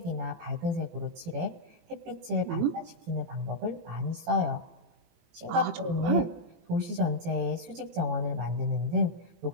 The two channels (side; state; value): left; late; 18 ms